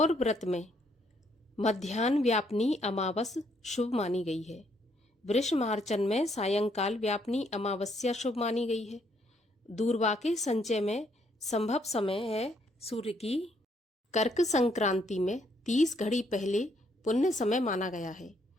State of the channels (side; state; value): both; normal; correlation 0.71